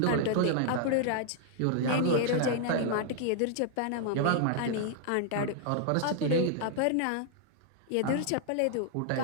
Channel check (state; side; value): different; both; correlation 0.00